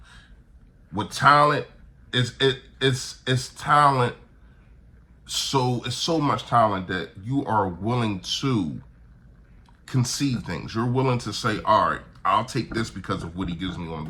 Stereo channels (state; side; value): identical; both; correlation 1.00